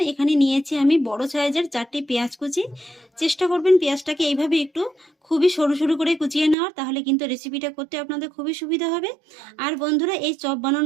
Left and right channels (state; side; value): drops out; left; at 6.6 s